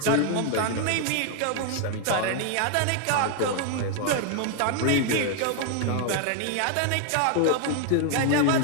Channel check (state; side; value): different; both; correlation 0.00